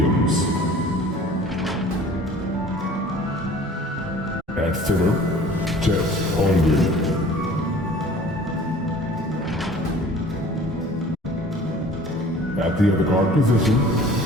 At center, Chet Holmgren. At the other guard position,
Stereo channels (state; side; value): normal; both; correlation 0.47